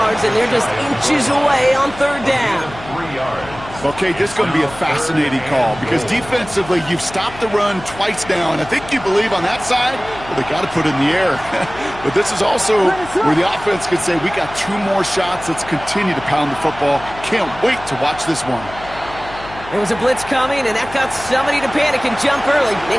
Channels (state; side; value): noise; left; hum, 16 dB below the sound